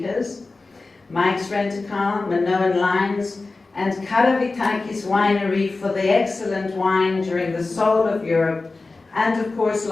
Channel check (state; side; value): quieter; right; 3.6 dB